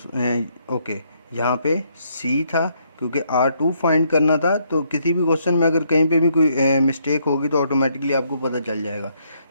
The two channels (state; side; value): inverted; both; correlation -0.72